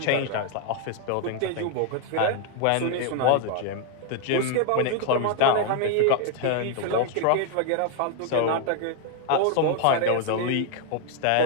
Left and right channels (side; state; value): both; different; correlation 0.00